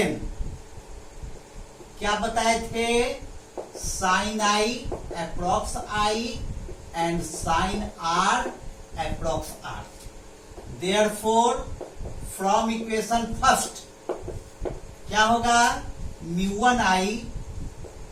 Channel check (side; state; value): both; identical; correlation 1.00